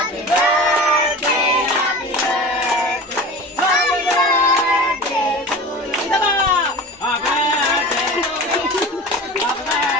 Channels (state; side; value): normal; both; correlation 0.35